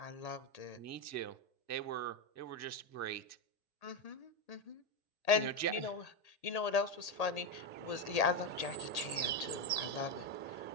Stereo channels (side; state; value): right; late; 1.8 ms